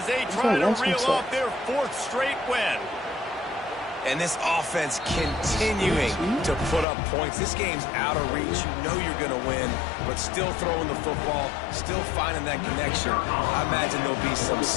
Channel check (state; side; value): drops out; right; at 6.9 s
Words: they He's try not to lost reel himself. off their 4th straight win. And this offense continuing to put up points. This game's out of reach. You know you're going to win, but still throwing the football, still finding that connection. I imagine there'll be some